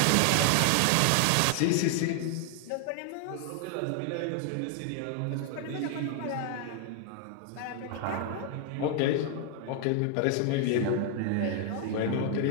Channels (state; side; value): different; both; correlation 0.00